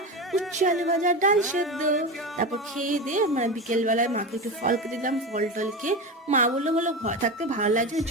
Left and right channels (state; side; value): normal; both; correlation 0.22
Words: উচ্ছে আলু ভাজা, ডাল সেদ্ধ। তারপর খেয়ে দিয়ে মানে বিকেলবেলায় মাকে একটু ফল কেটে দিলাম। ফল টল খেয়ে মা বললো ঘর থাকতে ভালো লাগছে,